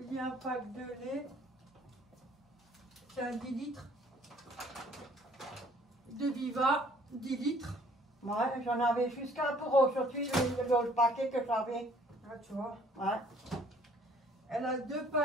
Il y a un pack de lait. C'est un 10 litres. De Viva, 10 litres. Ouais, j'en avais jusqu'à pour aujourd'hui, le paquet que j'avais. Ah, tu vois. Ouais. Elle a 2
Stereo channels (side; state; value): both; normal; correlation 0.58